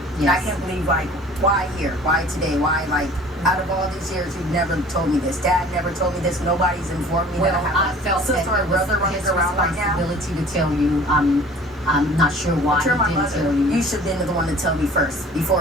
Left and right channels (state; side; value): normal; both; correlation 0.47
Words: And I Yes. can't believe, like, why here? Why today? Why, like, out of all these years, you've never told me this. Dad never told me this. Nobody's informed me that I have I felt a sister that or it was brother running his around right now. responsibility to tell you. I'm not sure why But you're my he didn't mother. tell you. You should have been the one to tell me first,